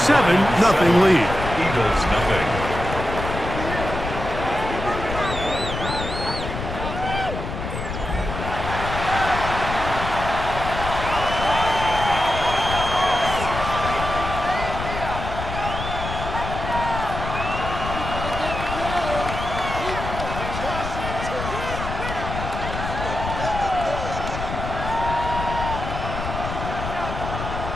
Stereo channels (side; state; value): left; noise; rumble, 6 dB below the sound